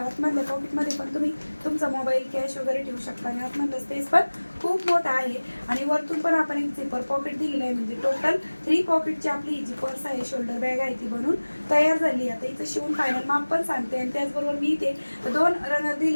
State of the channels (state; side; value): inverted; both; correlation -1.00